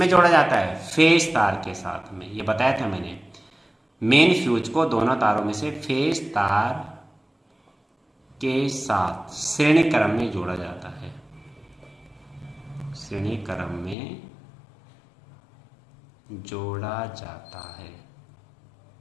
जोड़ा जाता है, फेज तार के साथ में। ये बताया था मैंने, मेन फ्यूज को दोनों तारों में से फेज तार के साथ श्रेणी क्रम में जोड़ा जाता है, श्रेणी क्रम में जोड़ा जाता है,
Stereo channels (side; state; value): right; drops out; at 14.0 s